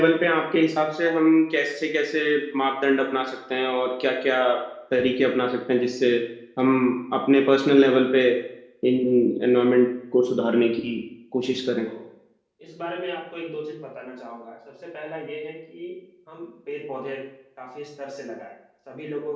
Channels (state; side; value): identical; both; correlation 1.00